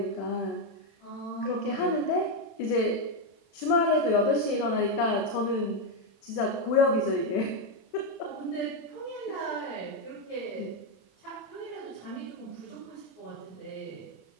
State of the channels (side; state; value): right; late; 27 ms